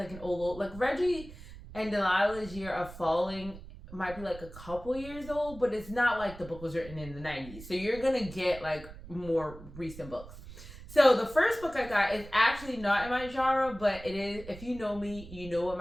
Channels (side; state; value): right; noise; rumble, 15 dB below the sound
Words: an old, like Reggie and Delilah's Year of Falling might be like a couple years old, but it's not like the book was written in the 90s. So you're going to get like more recent books. So the first book I got is actually not in my genre, but it is, if you know me, you know what